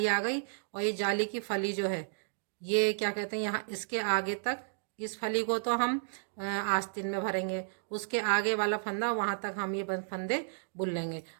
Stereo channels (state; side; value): silent; left; digital silence